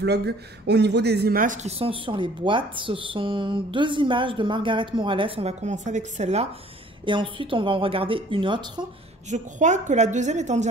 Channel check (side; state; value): both; normal; correlation 0.54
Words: au niveau des images qui sont sur les boîtes. Ce sont deux images de Margaret Morales. On va commencer avec celle-là et ensuite on va en regarder une autre. Je crois que la deuxième est en